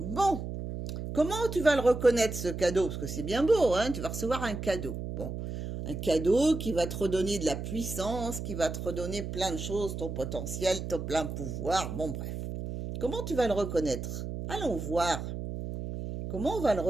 comment tu vas le reconnaître ce cadeau? Parce que c'est bien beau, hein, tu vas recevoir un cadeau. Bon, un cadeau qui va te redonner de la puissance, qui va te redonner plein de choses, ton potentiel, ton plein pouvoir, bon bref. Comment tu vas le reconnaître? Allons voir. Comment on va le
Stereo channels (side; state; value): right; noise; hum, 6 dB below the sound